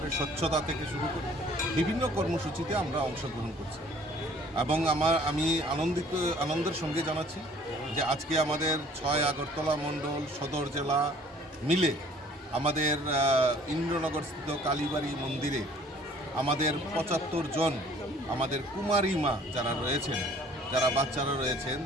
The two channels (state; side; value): normal; both; correlation 0.54